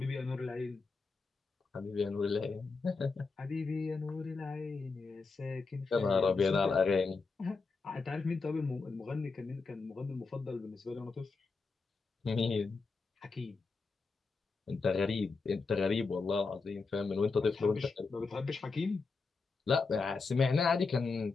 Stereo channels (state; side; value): quieter; right; 4.3 dB